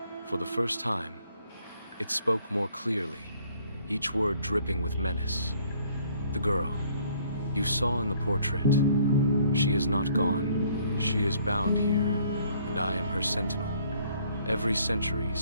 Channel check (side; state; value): both; inverted; correlation -0.62